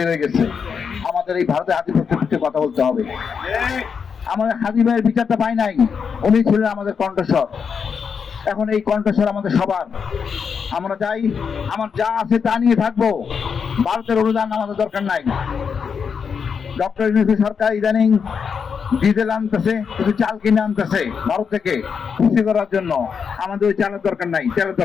গেছে। আমাদের এই ভারতের আধিপত্যের বিরুদ্ধে কথা বলতে হবে। আমাদের হাদি ভাইয়ের বিচারটা পাই নাই, উনি ছিলেন আমাদের কণ্ঠস্বর। এখন এই কণ্ঠস্বর আমাদের সবার। আমরা চাই আমার যা আছে তা নিয়ে থাকবো, ভারতের অনুদান আমাদের দরকার নাই। ডক্টর ইউনূস সরকার ইদানিং ডিজেল আনতেছে, কিছু চাল কিনে আনতেছে ভারত থেকে খুশি করার জন্য। আমাদের ওই চালের দরকার নাই, তেলের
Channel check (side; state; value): right; quieter; 6.3 dB